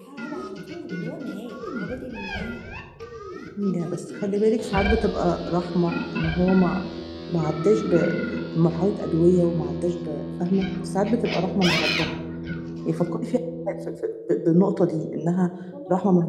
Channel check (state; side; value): identical; both; correlation 1.00